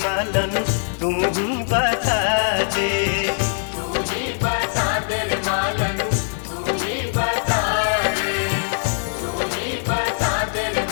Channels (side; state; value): right; silent; digital silence